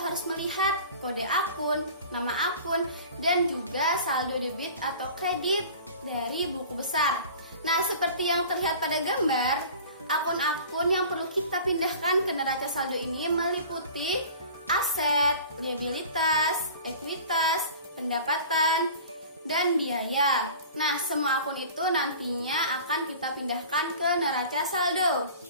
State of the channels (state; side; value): inverted; both; correlation -0.42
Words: melihat kode akun, nama akun, dan juga saldo debit atau kredit dari buku besar. Nah, seperti yang terlihat pada gambar, akun-akun yang perlu kita pindahkan ke neraca saldo ini meliputi aset, liabilitas, ekuitas, pendapatan, dan biaya. Nah, semua akun itu nantinya akan kita pindahkan ke neraca saldo.